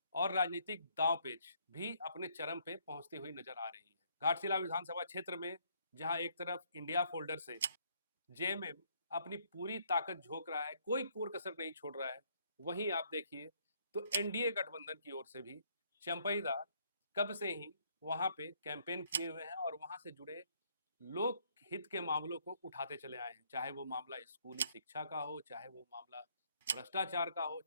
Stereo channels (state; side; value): inverted; both; correlation -0.68